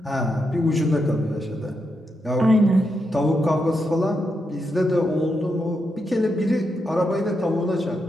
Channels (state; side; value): normal; both; correlation 0.83